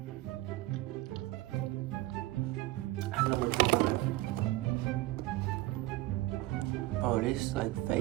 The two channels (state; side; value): quieter; left; 17.9 dB